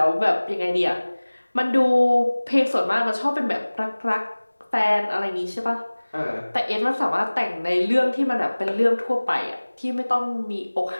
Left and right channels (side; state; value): both; inverted; correlation -1.00